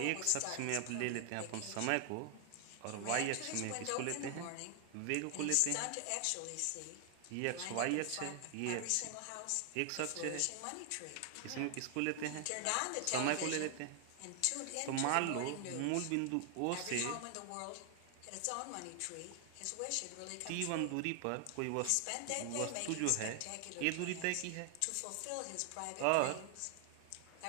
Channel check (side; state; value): both; different; correlation 0.00